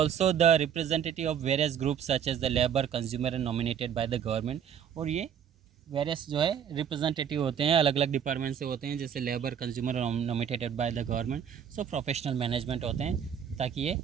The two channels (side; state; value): left; quieter; 8.4 dB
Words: the representative of various group such as the labour, consumer and nominated by the government. और ये various जो है representative होते हैं, अलग अलग डिपार्टमेंट से होते हैं, जैसे लेबर, कंज्यूमर और nominated by the government. So professional management होते हैं, ताकि ये